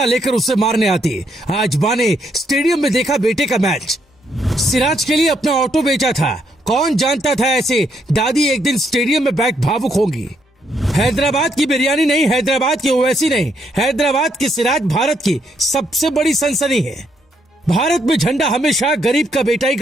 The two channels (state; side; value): normal; both; correlation 0.74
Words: लेकर उसे मारने आती। आज माँ ने स्टेडियम में देखा बेटे का मैच। सिराज के लिए अपना ऑटो बेचा था। कौन जानता था ऐसे दादी एक दिन स्टेडियम में बैठ भावुक होंगी। हैदराबाद की बिरयानी नहीं, हैदराबाद की ओवैसी नहीं, हैदराबाद की सिराज भारत की सबसे बड़ी सनसनी है। भारत में झंडा हमेशा गरीब का बेटा ही